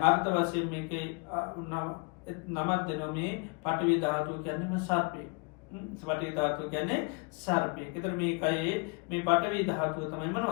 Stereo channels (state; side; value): quieter; right; 31.7 dB